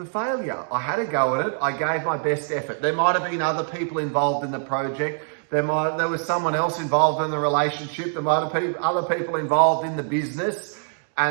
failure. I had a go at it. I gave my best effort. There might have been other people involved in the project. There was someone else involved in the relationship. There might have been other people involved in the business,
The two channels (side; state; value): left; silent; digital silence